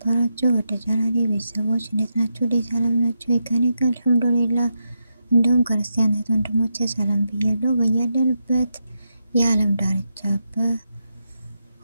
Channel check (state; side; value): inverted; both; correlation -0.85